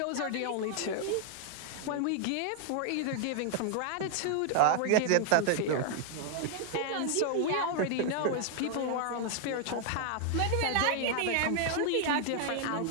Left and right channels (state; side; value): different; both; correlation 0.00